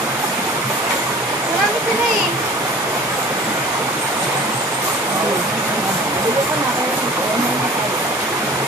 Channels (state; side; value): normal; both; correlation 0.44